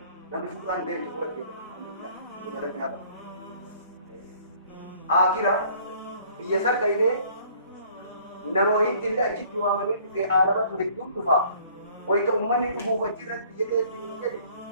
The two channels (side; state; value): both; inverted; correlation -0.56